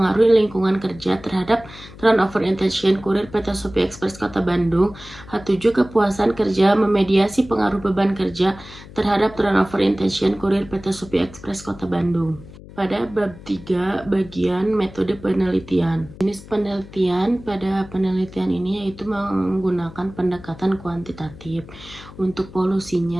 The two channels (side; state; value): left; noise; hum, 18 dB below the sound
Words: lingkungan kerja terhadap turnover intention kurir PT Shopee Express Kota Bandung. H7, kepuasan kerja memediasi pengaruh beban kerja terhadap turnover intention kurir PT Shopee Express Kota Bandung. Pada bab 3, bagian metode penelitian. Jenis penelitian pada penelitian ini yaitu menggunakan pendekatan kuantitatif. Untuk